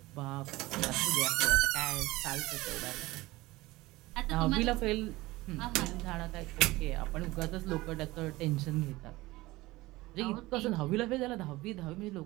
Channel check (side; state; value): left; quieter; 19.7 dB